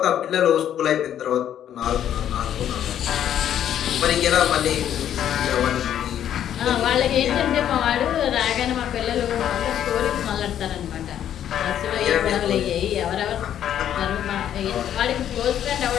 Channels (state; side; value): quieter; right; 10.3 dB